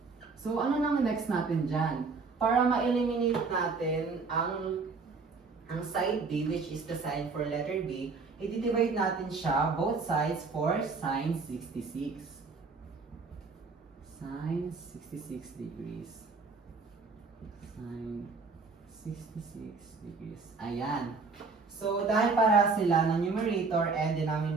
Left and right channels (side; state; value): left; quieter; 4.4 dB